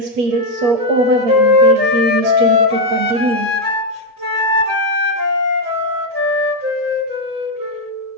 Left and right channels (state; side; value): late; left; 8.4 ms